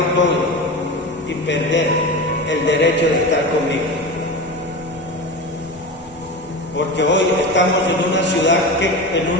todo y perder el derecho de estar conmigo? Porque hoy estamos en una ciudad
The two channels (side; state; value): both; normal; correlation 0.27